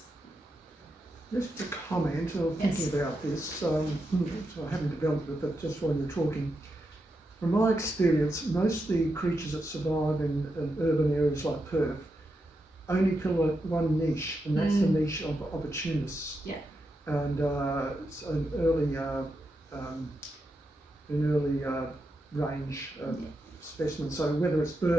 Just a comment of thinking about this, so I haven't developed it, but just while you're talking, from my experience, most of the creatures that survive in urban areas like Perth only fill one niche, and that's the niche of opportunists. Yeah. And it's an early range specimen. So whether it's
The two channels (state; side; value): normal; both; correlation 0.86